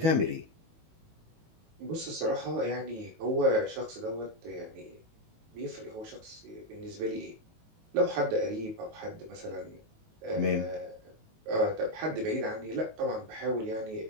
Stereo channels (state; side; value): late; left; 19 ms